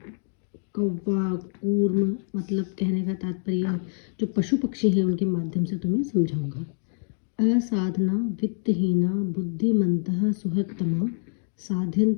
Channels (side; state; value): right; silent; 61 dB below the other